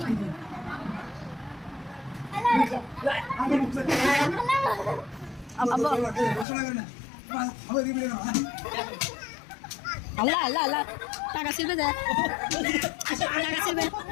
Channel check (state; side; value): drops out; right; at 6.5 s